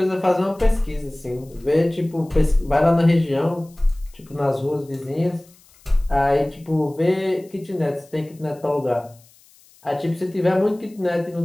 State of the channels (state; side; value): noise; left; hiss, 28 dB below the sound